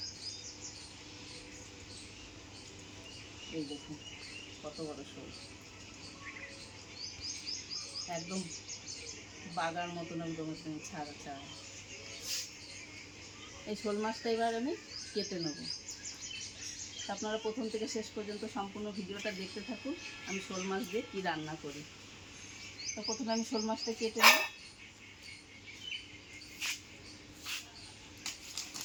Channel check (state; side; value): identical; both; correlation 1.00